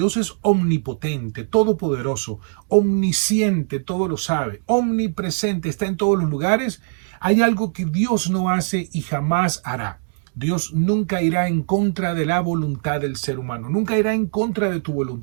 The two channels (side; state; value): left; silent; digital silence